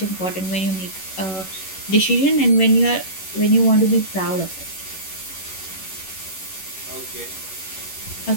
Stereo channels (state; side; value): late; right; 11 ms